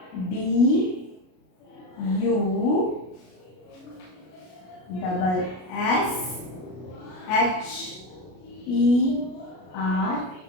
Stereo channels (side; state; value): right; late; 33 ms